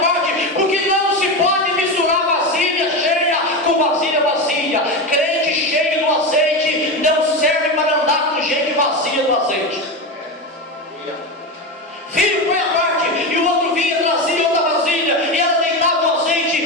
porque não se pode misturar vasilha cheia com vasilha vazia. Crente cheio do azeite não serve para andar com gente vazia do azeite. Filho, põe a parte, e o outro vinha, trazia outra vasilha, e ela deitava o azeite,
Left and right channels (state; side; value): normal; both; correlation 0.18